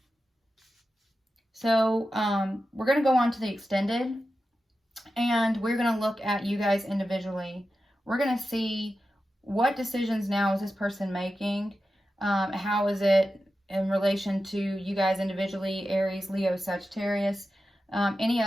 So we're going to go on to the extended, and we're going to look at you guys individually. We're going to see what decisions now is this person making. How is it in relation to you guys individually, Aries, Leo, Sagittarius, any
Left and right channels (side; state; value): both; normal; correlation 0.92